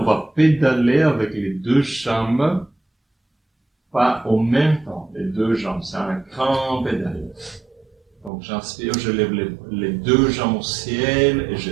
va pédaler avec les deux jambes, pas en même temps, les deux jambes, c'est un grand pédale. Donc j'inspire, je lève les deux jambes au ciel et je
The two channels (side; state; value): left; drops out; at 8.3 s